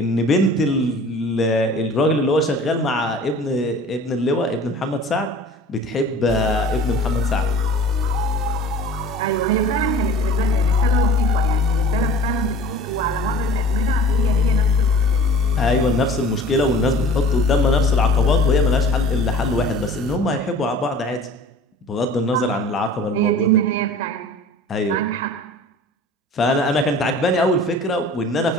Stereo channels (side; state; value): both; normal; correlation 0.44